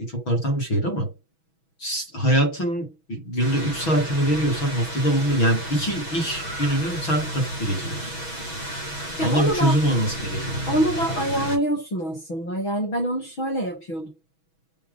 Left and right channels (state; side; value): late; right; 6.2 ms